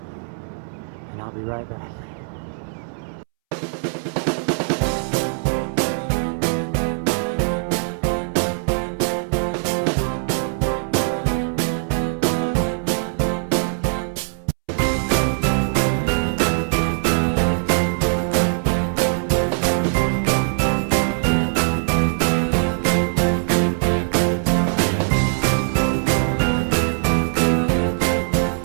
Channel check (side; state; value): left; silent; 65 dB below the other